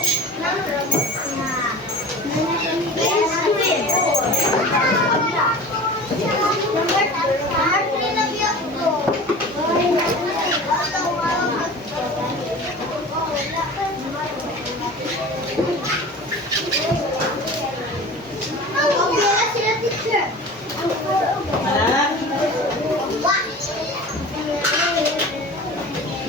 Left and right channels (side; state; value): both; normal; correlation 0.37